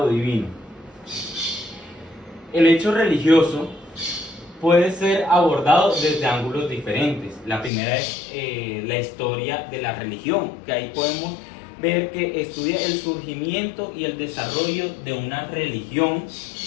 divino. El hecho religioso puede ser abordado desde ángulos diferentes. La primera es la historia de la religión, que ahí podemos ver que estudia el surgimiento y el desarrollo de una religión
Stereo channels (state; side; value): drops out; right; at 7.7 s